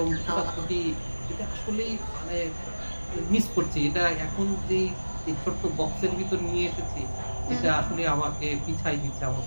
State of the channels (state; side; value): inverted; both; correlation -1.00